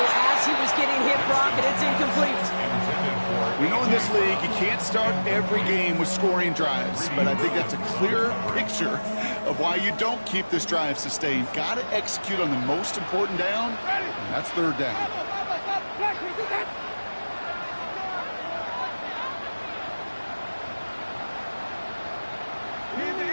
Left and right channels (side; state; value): both; inverted; correlation -1.00